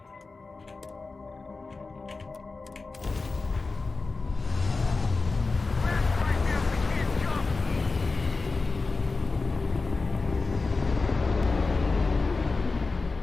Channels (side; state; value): right; quieter; 3.9 dB